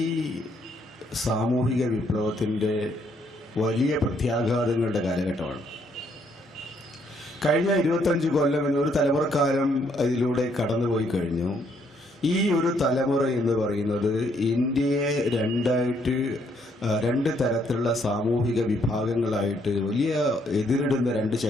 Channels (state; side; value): normal; both; correlation 0.70